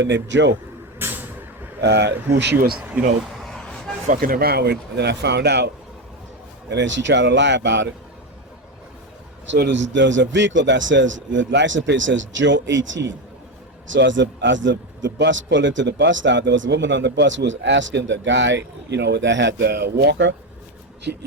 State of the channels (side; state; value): both; normal; correlation 0.13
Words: named Joe, who she was, fucking around with, and then I found out, and then she tried to lie about it. So there's a vehicle that says, the license plate says Joe 18. So as the bus pulled into the bus stop, there was a woman on the bus who was asking the guy, that had the walker.